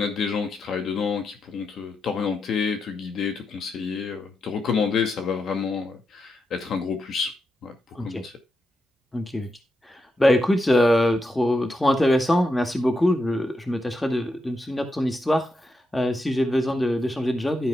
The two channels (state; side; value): normal; both; correlation 0.85